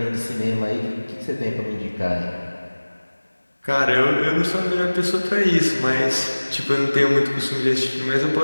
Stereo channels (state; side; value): inverted; both; correlation -1.00